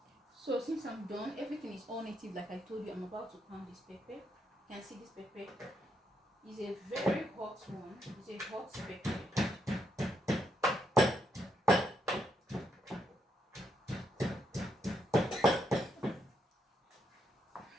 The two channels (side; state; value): both; normal; correlation 0.77